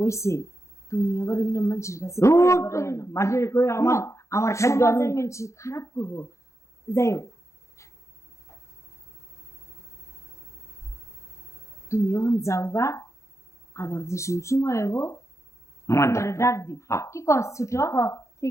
ওইছে, তুমি আবার অন্য মানুষের কাছে ধুর, কইয়া বেড়াইও না। মাঝে কই আমার আমার খাদ্য আমি সমাজের মানুষ খারাপ করবো, যাই হোক তুমি এখন যাও গা, আবার যে সময় হবো আমার তোমারে ডাক দিব। হ্যাঁ। কি কর ছোট?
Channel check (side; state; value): right; late; 0.14 ms